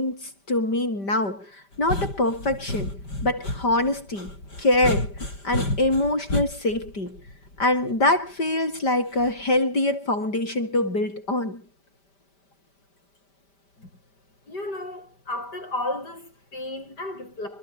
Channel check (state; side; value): late; right; 5.1 ms